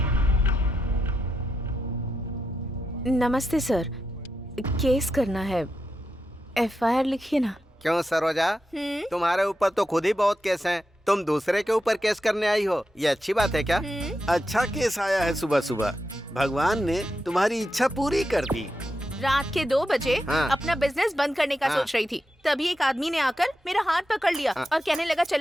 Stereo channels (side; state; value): both; normal; correlation 0.87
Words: नमस्ते सर, केस करना है। एफआईआर लिखिए ना। क्यों सरोजा, तुम्हारे ऊपर तो खुद ही बहुत केस हैं। तुम दूसरे के ऊपर केस करने आई हो, ये अच्छी बात है क्या? अच्छा केस आया है सुबह सुबह। भगवान ने तुम्हारी इच्छा पूरी कर दी। रात के 2 बजे हाँ। अपना बिजनेस बंद करने का हाँ। सोच रही थी, तभी एक आदमी ने आकर मेरा हाथ पकड़ लिया और कहने लगा